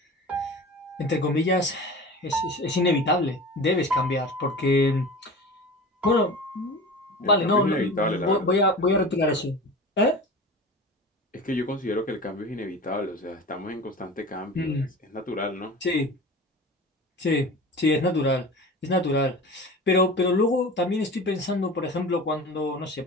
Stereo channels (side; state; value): both; normal; correlation 0.35